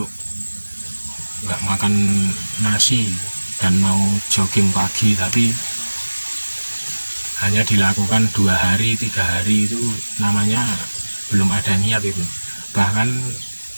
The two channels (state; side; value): inverted; both; correlation -1.00